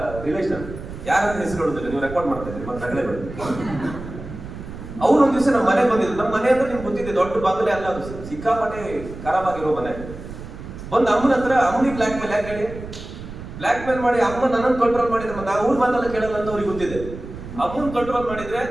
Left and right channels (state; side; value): noise; right; rumble, 12 dB below the sound